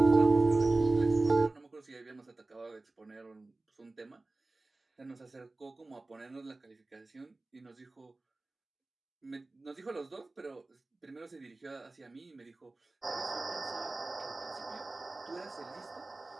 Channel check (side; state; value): left; quieter; 3.1 dB